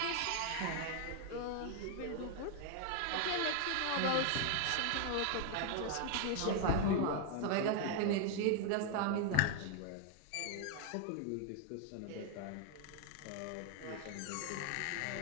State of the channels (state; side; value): different; both; correlation 0.00